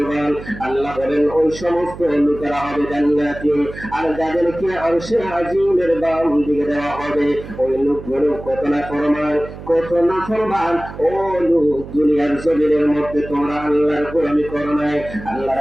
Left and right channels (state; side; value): noise; right; hum, 13 dB below the sound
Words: আল্লাহ বলেন ওই সমস্ত লোকেরা হবে জান্নাতি, আর যাদেরকে আরশে আজিমের বাম দিকে দেওয়া হবে ওই লোকগুলো কত না ফরমান, কত না ফরমান। ও লোক, দুনিয়ার জমিনের মধ্যে তোমরা আল্লাহর গোলামি করো নাই, আল্লাহর